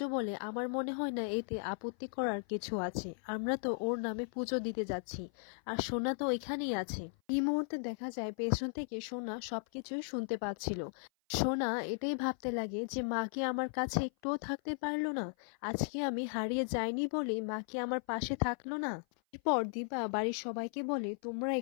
বলে, আমার মনে হয় না এতে আপত্তি করার কিছু আছে, আমরা তো ওর নামে পুজো দিতে যাচ্ছি আর সোনা তো এখানেই আছে। এই মুহূর্তে দেখা যায় পেছন থেকে সোনা সবকিছুই শুনতে পাচ্ছিল। সোনা এটাই ভাবতে লাগে যে মা কি আমার কাছে একটুও থাকতে পারলো না, আজকে আমি হারিয়ে যাইনি বলে মা কি আমার পাশে থাকলো না। এরপর দীপা বাড়ির সবাইকে বলে, তোমরা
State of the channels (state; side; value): silent; right; 53 dB below the other